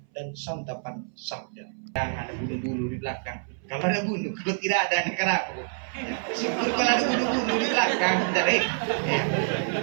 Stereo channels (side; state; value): left; silent; 60 dB below the other